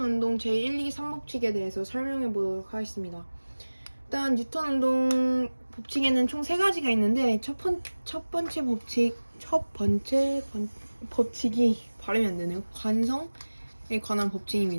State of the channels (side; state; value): both; inverted; correlation -1.00